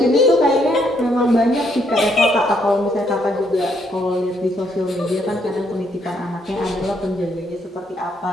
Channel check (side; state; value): both; normal; correlation 0.72